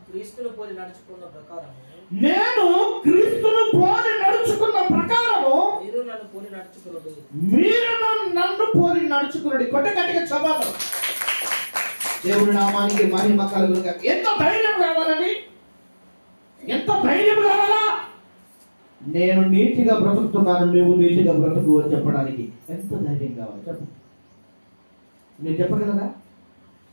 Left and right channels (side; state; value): both; inverted; correlation -1.00